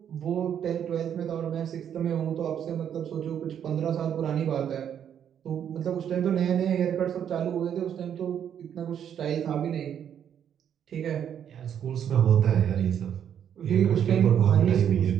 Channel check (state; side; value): quieter; left; 9.0 dB